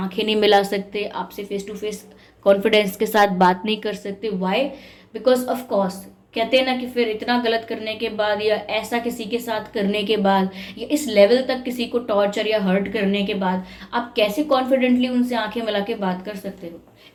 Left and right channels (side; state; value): both; identical; correlation 1.00